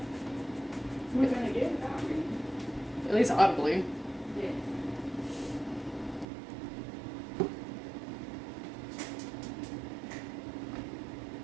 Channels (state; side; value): drops out; left; at 6.2 s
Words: We're gonna get it, At least audibly. yeah.